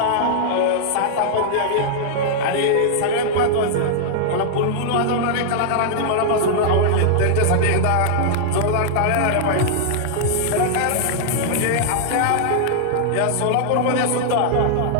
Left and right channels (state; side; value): different; both; correlation -0.01